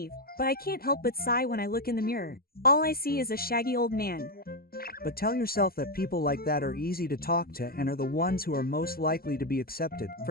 but I can't help but sigh when I look in the mirror. All I see is a shaggy old man. But tell yourself that people like that are easy to talk to and are the ones who are most likely to be accepted.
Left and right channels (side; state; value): right; late; 0.44 ms